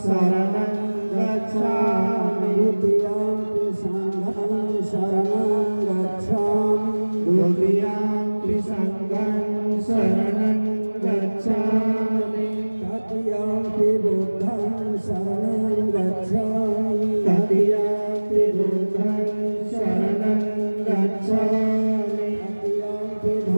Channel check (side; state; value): both; inverted; correlation -1.00